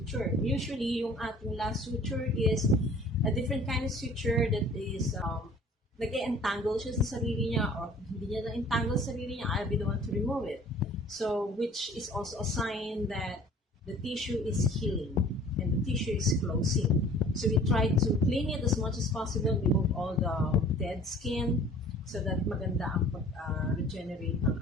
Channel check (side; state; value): both; normal; correlation 0.49